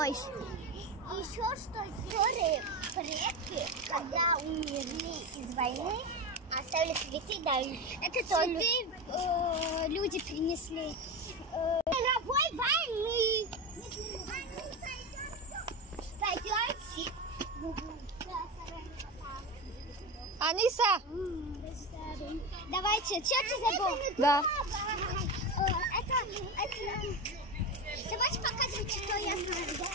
Еще что истории предки, когда умерли из войны, оставили цветы, да, это цветы люди принесли. Мировой войны. Пойдете? Аниса! Давайте, что ты забыл? Да. Давайте показывать, что я знаю.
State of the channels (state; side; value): normal; both; correlation 0.20